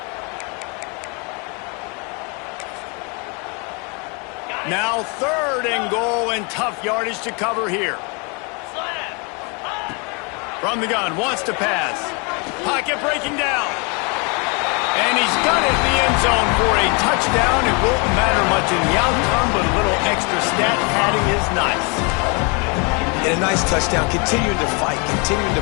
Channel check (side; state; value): right; quieter; 32.6 dB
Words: Now 3rd and goal, and tough yardage to cover here. From the gun, wants to pass. Pocket breaking down. And he's got it in the end zone for a touchdown. It won't matter much in the outcome, but a little extra stat padding is nice. And a nice touchdown, continuing to fight, continuing to